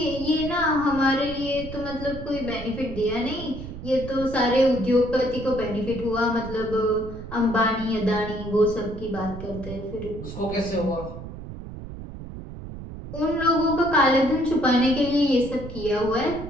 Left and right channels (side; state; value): right; noise; rumble, 11 dB below the sound